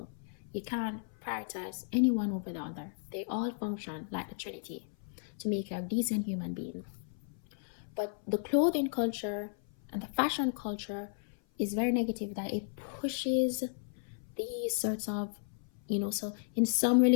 You can't prioritize anyone over the other. They all function like the Trinity to make you a decent human being. But the clothing culture and the fashion culture is very negative, that it pushes these sorts of, so in some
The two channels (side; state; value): right; silent; 55 dB below the other